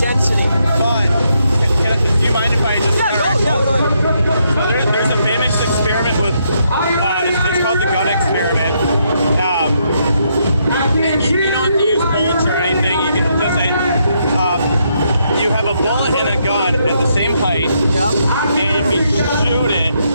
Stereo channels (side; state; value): both; inverted; correlation -0.76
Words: But, do you mind if I just... Yeah, go ahead. So there's a famous experiment with, it's called the gun experiment. And you don't have to use bullets or anything. You can just say, you have a bullet and a gun at the same height, and if you shoot it